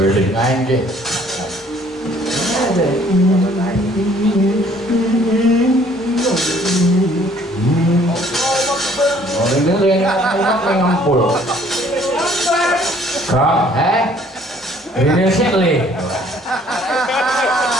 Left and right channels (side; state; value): both; normal; correlation 0.59